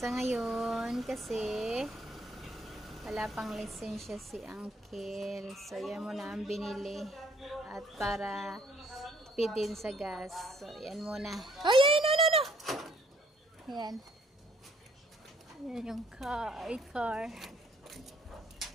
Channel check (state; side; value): normal; both; correlation 0.64